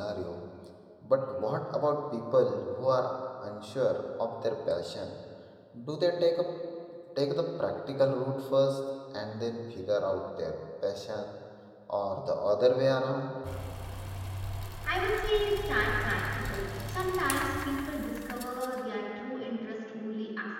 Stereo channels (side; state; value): both; identical; correlation 1.00